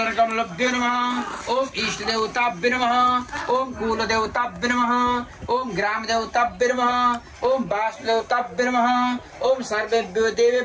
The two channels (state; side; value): identical; both; correlation 1.00